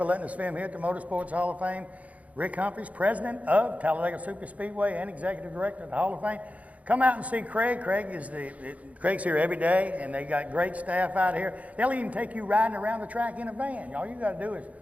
letting us film here at the Motorsports Hall of Fame. Rick Humphreys, president of Talladega Superspeedway and executive director of the Hall of Fame. Come out and see Craig. Craig's here every day, and they got great staff out here. They'll even take you riding around the track in a van. All you got to do is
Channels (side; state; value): left; late; 0.069 ms